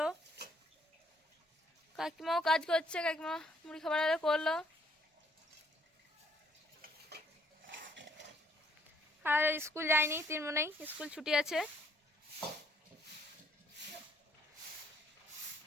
কাকিমাও কাজ করছে, কাকিমা মুড়ি খাবার আরে করলো। আর স্কুল যায়নি, 3 মনেই স্কুল ছুটি আছে।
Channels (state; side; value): normal; both; correlation 0.66